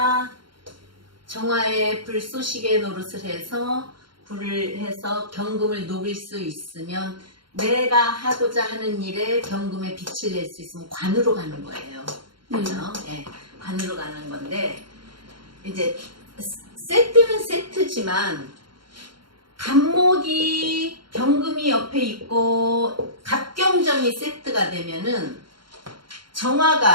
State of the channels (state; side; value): late; left; 0.73 ms